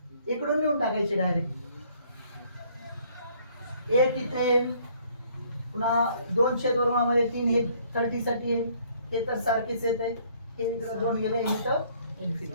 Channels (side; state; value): both; inverted; correlation -0.62